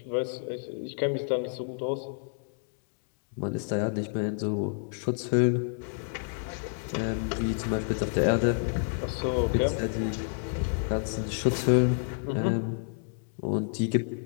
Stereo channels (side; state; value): right; silent; digital silence